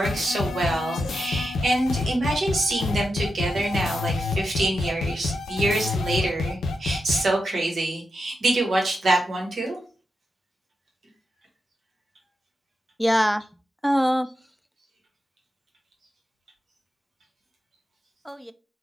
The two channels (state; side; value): normal; both; correlation 0.87